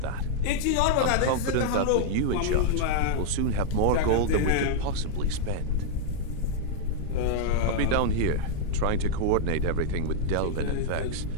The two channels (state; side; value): different; both; correlation -0.01